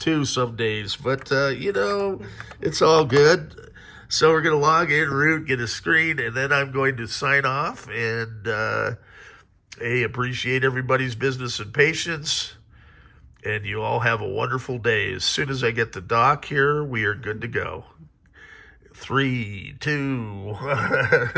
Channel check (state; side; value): identical; both; correlation 1.00